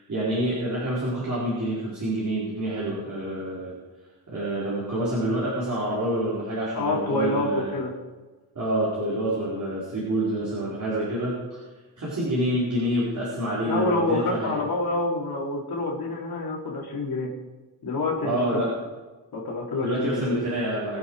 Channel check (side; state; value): both; normal; correlation 0.10